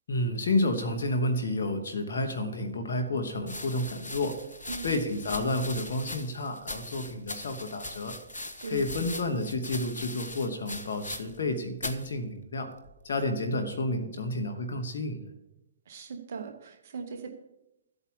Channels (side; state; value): both; inverted; correlation -0.45